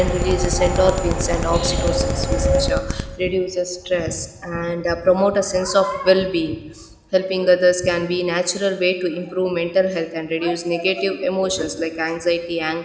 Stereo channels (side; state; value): both; identical; correlation 1.00